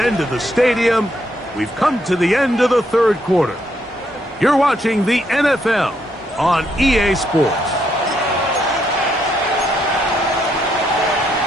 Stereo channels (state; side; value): normal; both; correlation 0.75